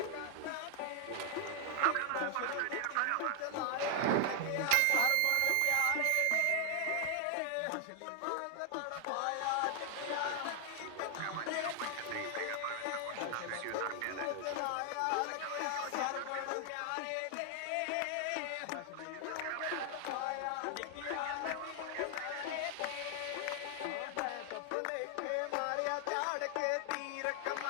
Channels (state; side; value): different; both; correlation 0.00